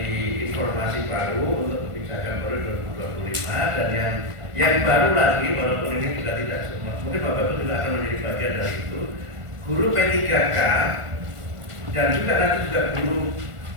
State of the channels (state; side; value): late; left; 1.5 ms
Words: informasi baru untuk kebijakan baru 2025, dan yang baru lagi, walaupun ini juga tidak semua, mungkin Bapak itu juga akan menjadi bagian dari itu. Guru P3K dan juga nanti juga